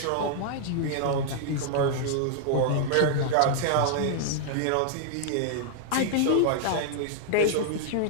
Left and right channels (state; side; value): different; both; correlation -0.01